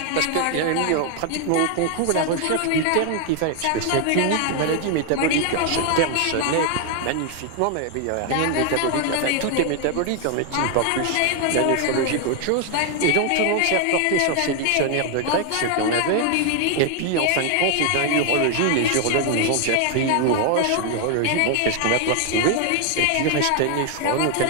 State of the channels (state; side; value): different; both; correlation 0.00